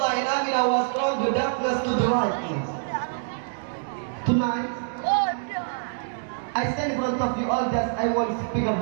and Amina, was from the darkness to the light. Tonight, I stand in front of you all just I want to speak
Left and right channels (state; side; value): silent; left; digital silence